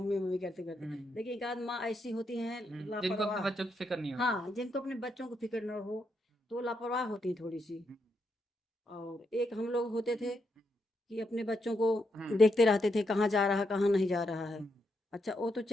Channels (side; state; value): both; normal; correlation 0.80